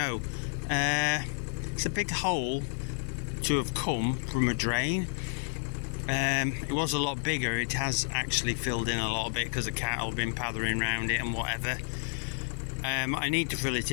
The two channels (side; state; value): right; silent; 57 dB below the other